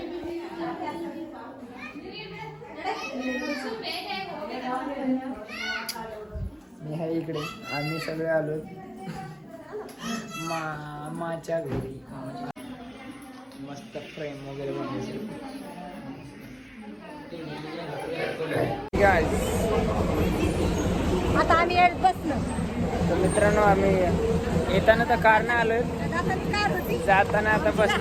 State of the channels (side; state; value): both; identical; correlation 1.00